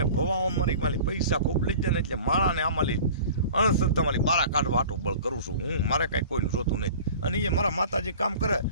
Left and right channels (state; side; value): inverted; both; correlation -0.42